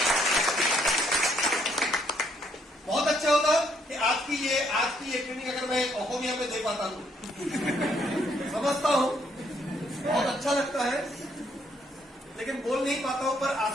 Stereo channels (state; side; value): normal; both; correlation 0.70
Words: बहुत अच्छा होता कि आज की ये ट्रेनिंग अगर मैं ओहोमिया में दे पाता हूं, समझता हूं, बहुत अच्छा लगता है, लेकिन बोल नहीं पाता हूं। पर